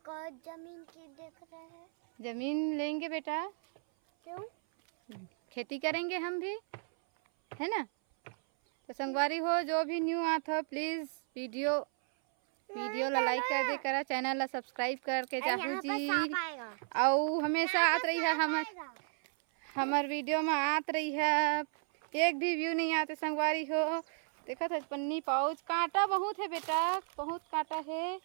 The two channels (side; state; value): left; silent; 55 dB below the other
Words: और जमीन की देख रहे हैं। जमीन लेंगे बेटा, क्यों? खेती करेंगे हम भी, है ना। तो संगवारी हो जो भी न्यू आत हो प्लीज वीडियो ला लाइक कर दे करा, चैनल ला सब्सक्राइब करके जाहू जी। और हमेशा आत रही है हमार वीडियो में आत रही है। एक भी व्यू नहीं आते संगवारी हो। देखो था पन्नी पाउच, कांटा बहुत है बेटा, बहुत कांटा है।